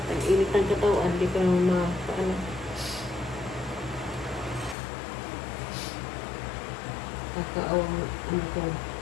Ang init ng katawan, hindi ka kakaawang ko.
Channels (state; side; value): drops out; right; at 4.8 s